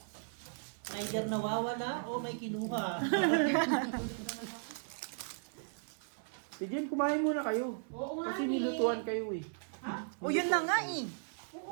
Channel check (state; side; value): silent; left; 54 dB below the other